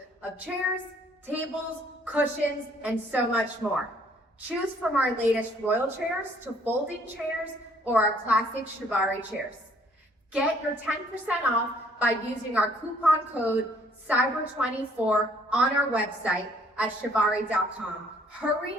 of chairs, tables, cushions, and so much more. Choose from our latest royal chairs to folding chairs or our classic Chivari chairs. Get your 10% off by using our coupon code CYBER24 on our website at chivari.com. Hurry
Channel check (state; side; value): normal; both; correlation 0.62